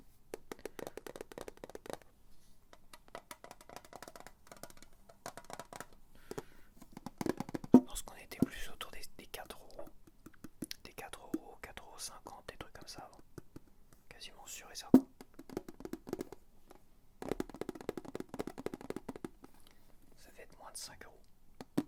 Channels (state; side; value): identical; both; correlation 1.00